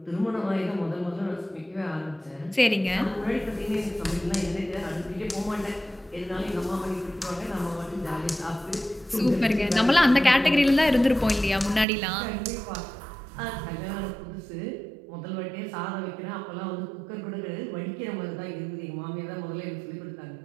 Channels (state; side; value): drops out; left; at 11.9 s